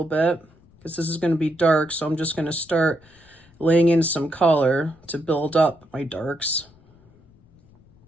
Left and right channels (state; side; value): noise; left; rumble, 29 dB below the sound